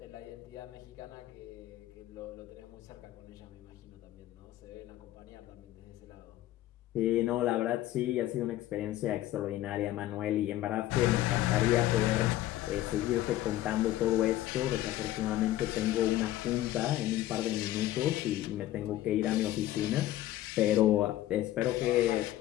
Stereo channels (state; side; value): quieter; right; 14.4 dB